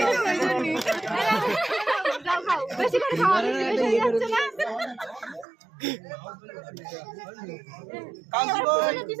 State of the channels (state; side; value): drops out; left; at 5.5 s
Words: যাও খাও বেশি করে খাওয়া বেশি যাচ্ছে না কাজী কই